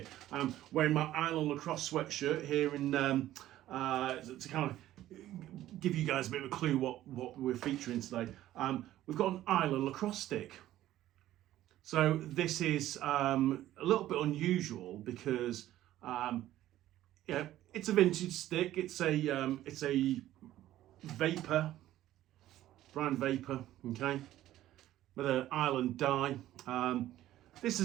I'm wearing my Island lacrosse sweatshirt here in to kind of give you guys a bit of a clue what we're featuring today. We've got an Island lacrosse stick. So this is a little bit unusual because it's a vintage stick. It's a vapor, brown vapor, okay, with an Island die. This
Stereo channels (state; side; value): quieter; left; 13.9 dB